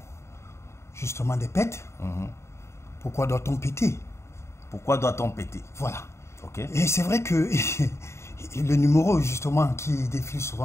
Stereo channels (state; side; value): late; right; 0.13 ms